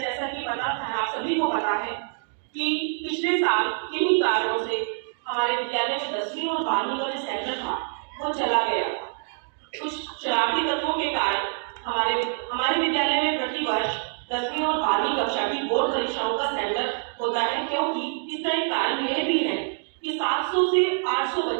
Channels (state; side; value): silent; left; digital silence